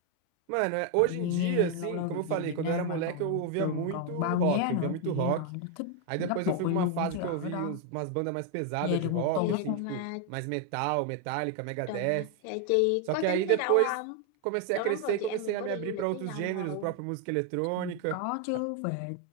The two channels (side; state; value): both; different; correlation 0.01